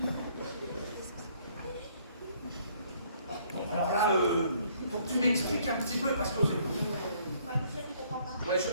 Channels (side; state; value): both; inverted; correlation -0.63